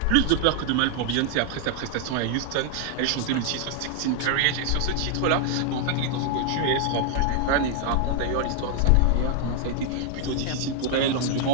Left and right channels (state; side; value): different; both; correlation 0.00